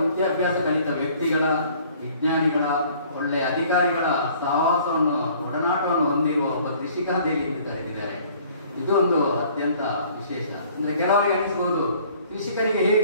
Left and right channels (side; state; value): both; inverted; correlation -0.55